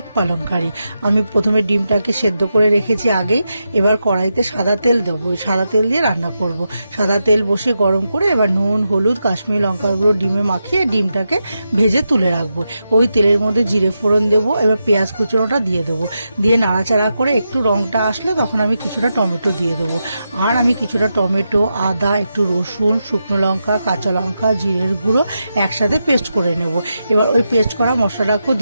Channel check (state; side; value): inverted; both; correlation -0.87